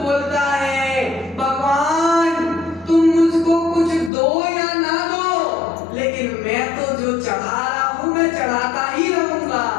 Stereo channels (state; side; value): drops out; right; at 4.1 s